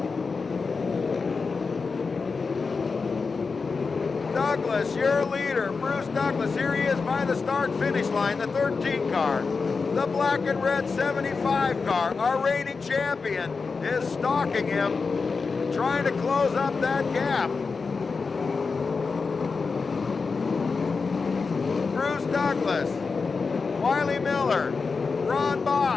Douglas, your leader, Bruce Douglas. Here he is by the start-finish line, the 13 car. The black and red 75 car, our reigning champion, is stalking him, trying to close up that gap. Bruce Douglas, Wiley Miller, Ron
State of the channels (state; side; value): quieter; right; 4.7 dB